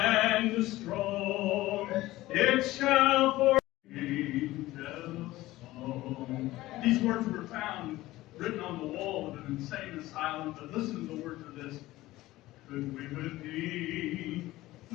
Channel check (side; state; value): right; quieter; 17.2 dB